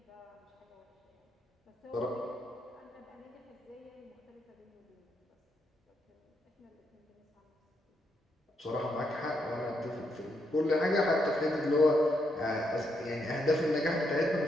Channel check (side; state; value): both; normal; correlation 0.79